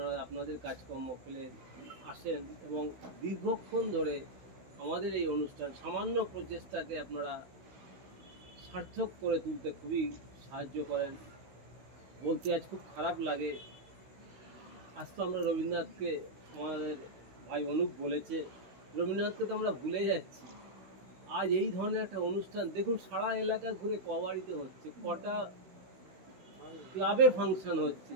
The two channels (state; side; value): late; left; 16 ms